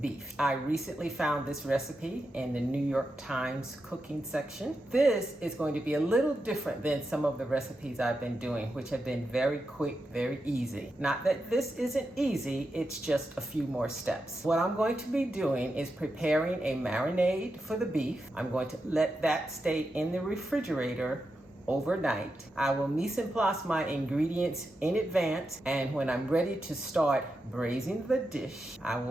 beef. I recently found this recipe in the New York Times cooking section. This is going to be a little different than some of the recipes I've been doing, which have been very quick, very easy. Not that this isn't easy, it's just a few more steps. What I'm going to be doing is preparing a marinade for the beef. I'm going to let that stay in the refrigerator overnight. I will mise en place my ingredients in advance, and when I'm ready to start braising the dish, I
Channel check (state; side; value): normal; both; correlation 0.88